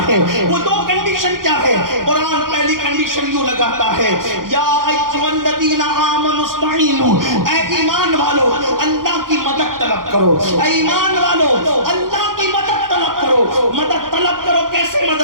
ہے؟ وہ دو کنڈیشن کیا ہے؟ قرآن پہلی کنڈیشن یوں لگاتا ہے، یا ایھا الذین آمنوا استعینوا، اے ایمان والو اللہ کی مدد طلب کرو، اے ایمان والو اللہ کی مدد طلب کرو۔ مدد طلب کرو، کیسے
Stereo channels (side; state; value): left; late; 0.91 ms